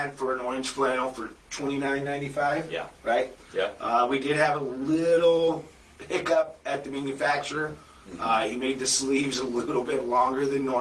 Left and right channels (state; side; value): identical; both; correlation 1.00